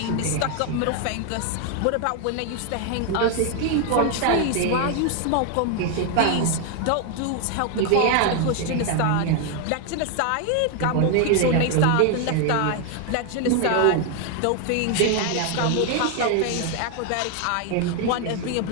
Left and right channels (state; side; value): different; both; correlation 0.01